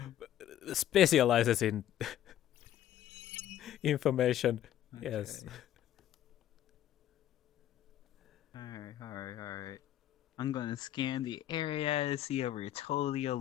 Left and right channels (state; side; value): quieter; right; 11.9 dB